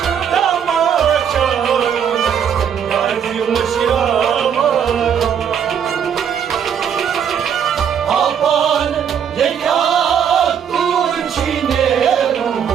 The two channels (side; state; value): left; quieter; 8.1 dB